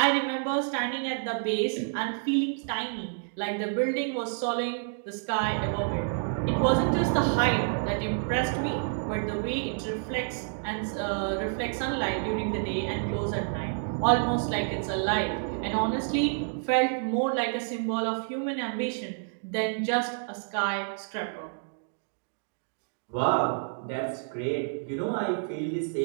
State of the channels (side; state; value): left; silent; digital silence